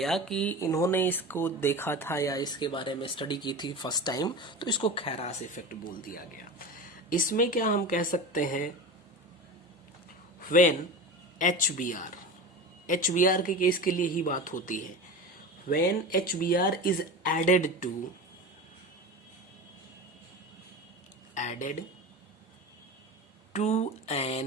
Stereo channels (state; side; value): normal; both; correlation 0.29